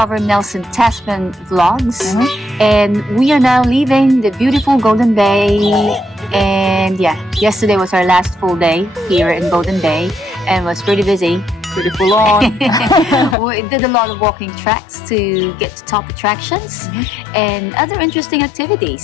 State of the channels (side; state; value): right; drops out; at 13.4 s